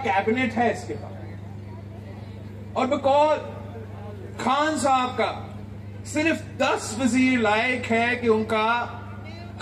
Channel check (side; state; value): both; identical; correlation 1.00